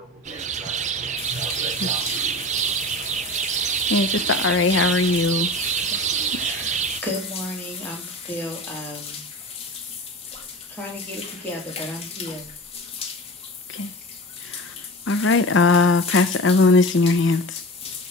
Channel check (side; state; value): both; normal; correlation 0.33